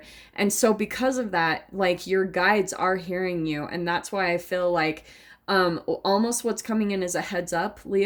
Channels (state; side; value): identical; both; correlation 1.00